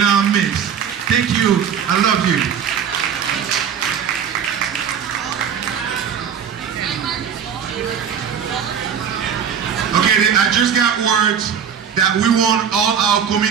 midst. Thank you. I love you. Okay, I just got words that we want all our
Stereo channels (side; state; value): left; quieter; 7.6 dB